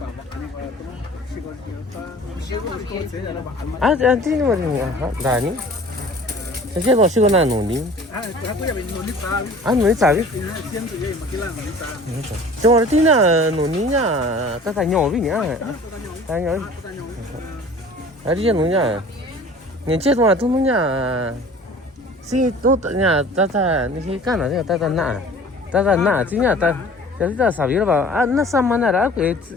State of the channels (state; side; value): normal; both; correlation 0.46